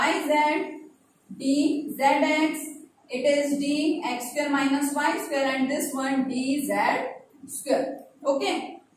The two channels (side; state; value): both; identical; correlation 1.00